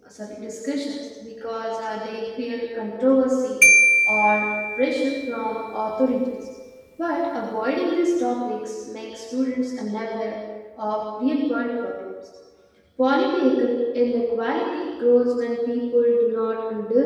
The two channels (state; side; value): identical; both; correlation 1.00